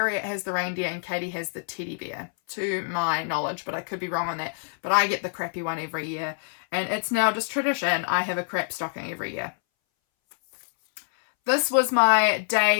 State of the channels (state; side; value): silent; right; 61 dB below the other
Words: has the reindeer and Katie has the teddy bear, to my knowledge, but I could be wrong on that. But I get the crappy one every year, and it's now just tradition. I have a crap stocking every year. This was my